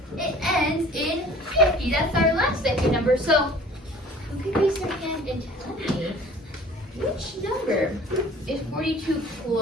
it ends in 50. That's our last decade number. So who can raise their hand and tell me which number is 42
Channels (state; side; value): normal; both; correlation 0.48